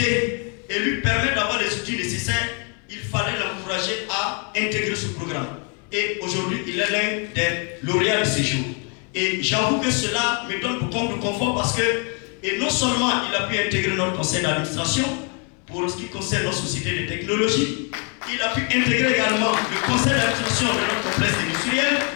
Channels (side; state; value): right; quieter; 37.5 dB